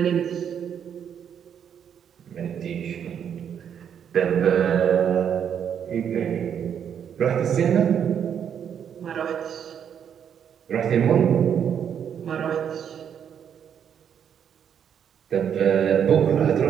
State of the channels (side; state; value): left; quieter; 8.4 dB